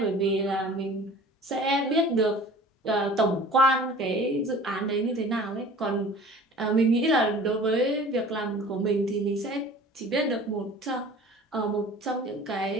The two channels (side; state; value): both; normal; correlation 0.45